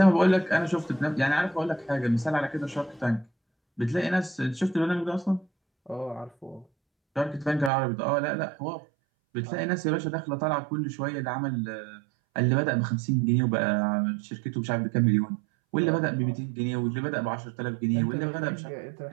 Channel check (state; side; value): drops out; left; at 7.7 s